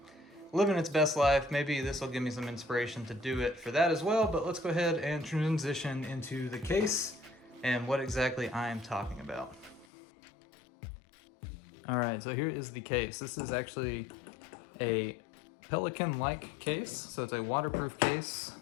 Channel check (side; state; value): right; drops out; at 9.9 s